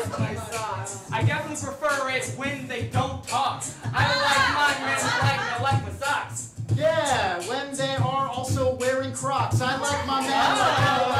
my socks. I definitely prefer it when they don't talk. I like my men like I like my socks. Yeah, when they are also wearing Crocs. I like my men like I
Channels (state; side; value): identical; both; correlation 1.00